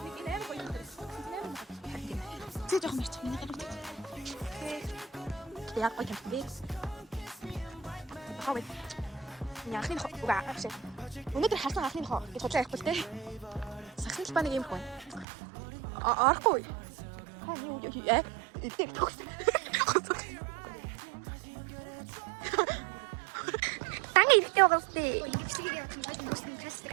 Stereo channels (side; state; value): left; drops out; at 15.2 s